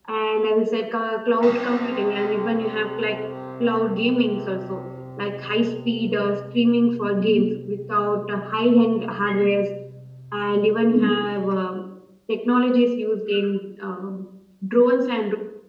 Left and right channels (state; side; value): identical; both; correlation 1.00